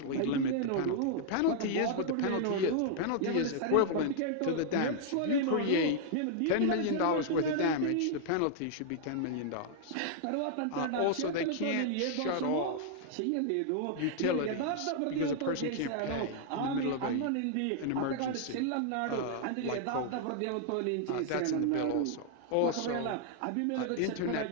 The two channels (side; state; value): both; different; correlation -0.01